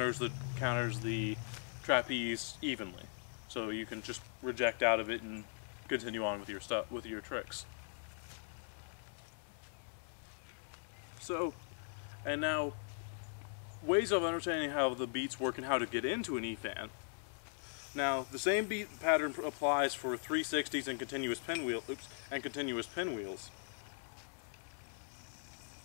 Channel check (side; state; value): right; silent; 51 dB below the other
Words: the trapeze evenly, so you can just reject out of it and continue on with your tricks. So, and now, ways of understanding how the beats work and how to get into an EFAN. Now, the same beat pattern applies for 360s and continuous pinwheels.